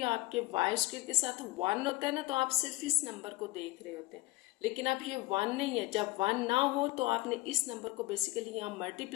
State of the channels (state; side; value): quieter; right; 19.8 dB